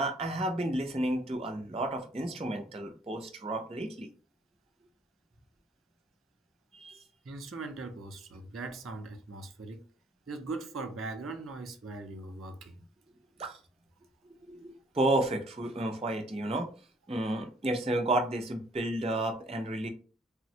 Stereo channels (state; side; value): normal; both; correlation 0.61